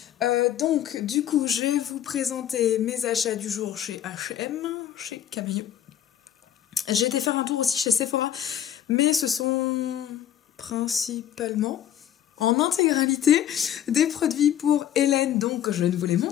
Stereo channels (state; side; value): quieter; right; 10.7 dB